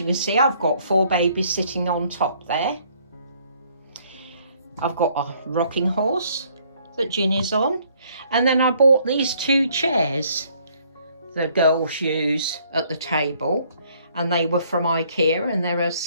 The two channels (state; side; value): inverted; both; correlation -0.64